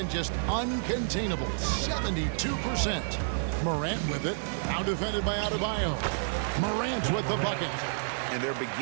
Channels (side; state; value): left; silent; digital silence